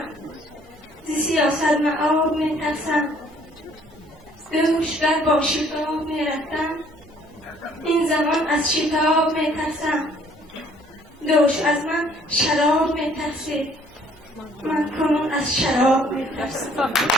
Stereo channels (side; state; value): both; normal; correlation 0.60